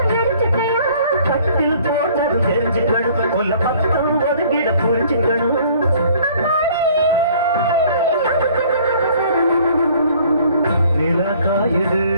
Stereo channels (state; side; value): inverted; both; correlation -0.56